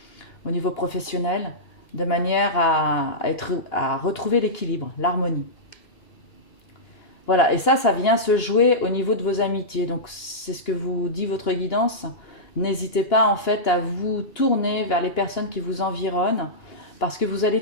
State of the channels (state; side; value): late; right; 2.9 ms